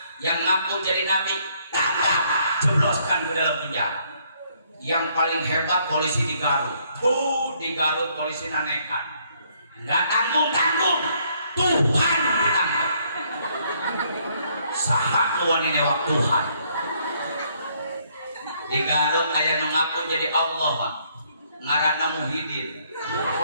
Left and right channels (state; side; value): inverted; both; correlation -0.68